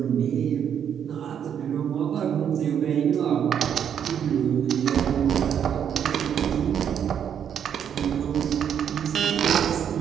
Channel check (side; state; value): left; quieter; 8.6 dB